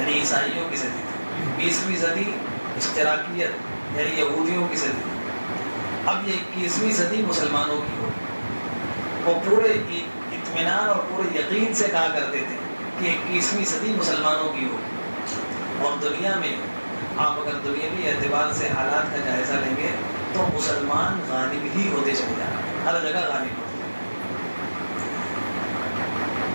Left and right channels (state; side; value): inverted; both; correlation -1.00